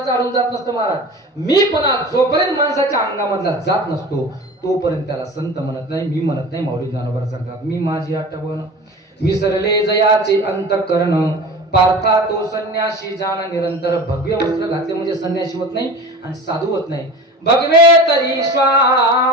अडून जात नसतं महाराज. मीपणा जोपर्यंत माणसाच्या अंगामधला जात नसतो तोपर्यंत त्याला संत म्हणत नाही. मी म्हणत नाही. माऊली ज्ञानोबा सांगतात मी माझी आठवण विसरले जयाचे अंतकरण पार्था तो संन्यासी जाण निरंतर. भगवे वस्त्र घातले म्हणजे संन्यासी होत नाही आणि साधू होत नाही. भगवे तरी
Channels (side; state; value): both; normal; correlation 0.35